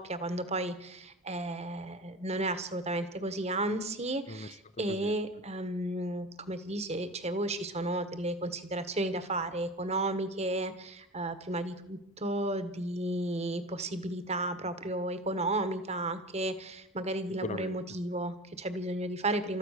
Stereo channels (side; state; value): both; normal; correlation 0.33